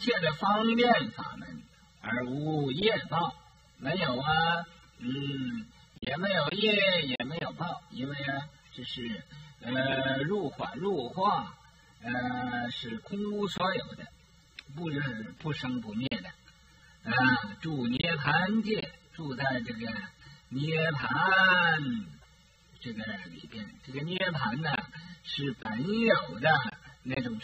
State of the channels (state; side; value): identical; both; correlation 1.00